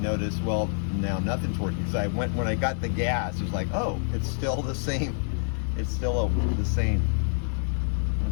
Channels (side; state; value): right; silent; 60 dB below the other